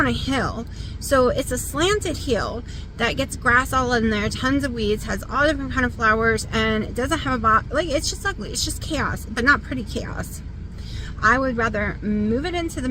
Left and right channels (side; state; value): both; identical; correlation 1.00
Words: a hill, so it's a slanted hill that gets grass all in there, tons of weeds, has all different kind of flowers, and it doesn't have a like, it's just ugly. It's just chaos, but not pretty chaos. I would rather move it into the